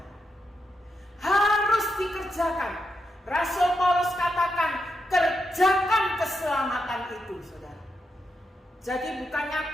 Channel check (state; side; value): normal; both; correlation 0.84